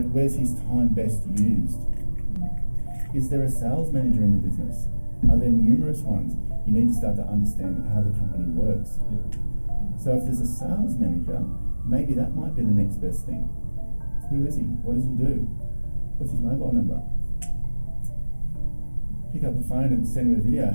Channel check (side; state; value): both; inverted; correlation -1.00